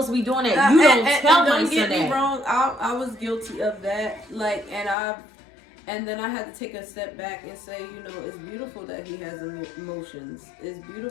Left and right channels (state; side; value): drops out; right; at 5.0 s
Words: to be doing that. You don't tell my son that. Don't get me wrong, I was guilty of that. Like, and then I had to take a step back and say, you know, it's beautiful that he has emotions. It's